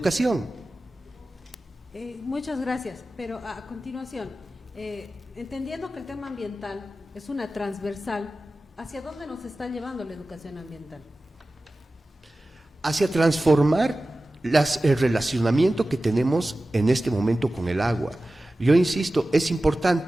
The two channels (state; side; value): normal; both; correlation 0.95